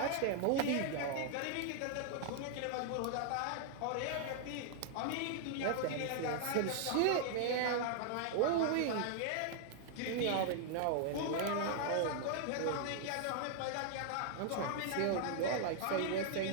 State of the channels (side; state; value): both; different; correlation -0.01